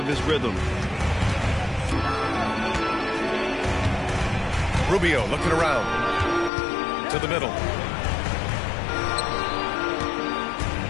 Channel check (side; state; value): right; drops out; at 6.5 s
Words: his rhythm. Rubio looking around. To the middle.